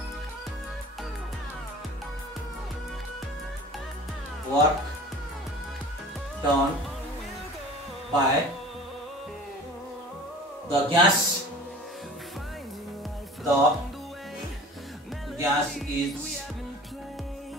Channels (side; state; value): both; normal; correlation 0.43